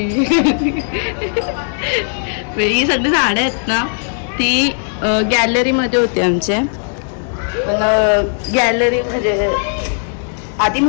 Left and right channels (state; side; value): silent; right; digital silence